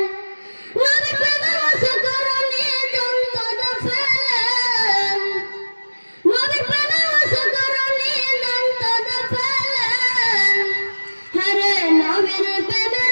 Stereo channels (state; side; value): inverted; both; correlation -1.00